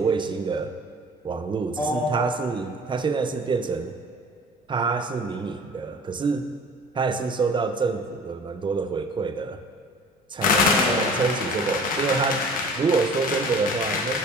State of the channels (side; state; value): both; normal; correlation 0.45